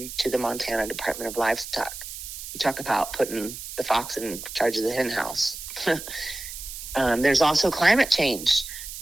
to the Montana Department of Livestock. You talk about putting the fox in charge of the hen house. There's also climate change,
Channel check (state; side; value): noise; right; hiss, 10 dB below the sound